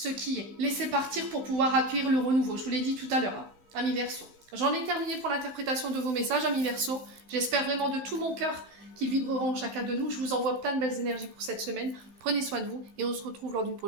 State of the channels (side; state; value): left; late; 16 ms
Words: qui est. Laisser partir pour pouvoir accueillir le renouveau. Je vous l'ai dit tout à l'heure, hein, amis Verseaux. J'en ai terminé pour l'interprétation de vos messages, amis Verseaux. J'espère vraiment de tout mon cœur qu'ils vibreront en chacun de nous. Je vous envoie plein de belles énergies pour cette semaine. Prenez soin de vous et on se retrouve lors d'une